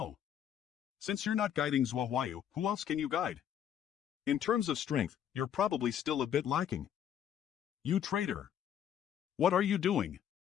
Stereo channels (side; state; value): right; quieter; 9.5 dB